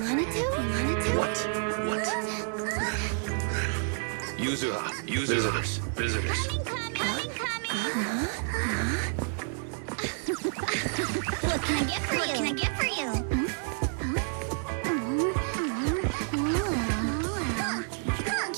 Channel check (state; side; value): silent; left; 58 dB below the other